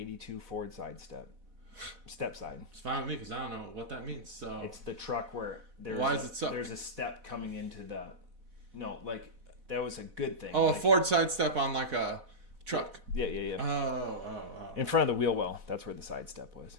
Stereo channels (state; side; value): late; left; 4.1 ms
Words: Ford step side. It's fine with me because I don't know what that means. So it's the truck where there's a step coming into the. No, like that was a good thing. Oh, like, a Ford side step on like a truck. Yeah. Oh. In front of the wheel well. That's where the side step was.